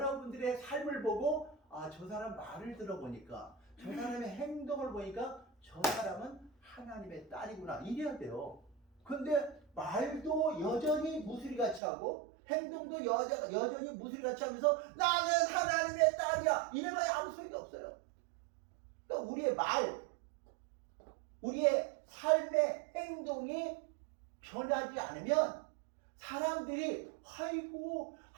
삶을 보고 저 사람 말을 들어보니까 저 사람의 행동을 보니까 저 사람은 하나님의 딸이구나 이래야 돼요. 근데 말도 여전히 무수리같이 하고 행동도 여전히 무수리같이 하면서 나는 하나님의 딸이야 이래봐야 아무 소용이 없어요. 그러니까 우리의 말, 우리의 삶의 행동이 변하지 않으면 사람들이 아이고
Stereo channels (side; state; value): left; drops out; at 11.8 s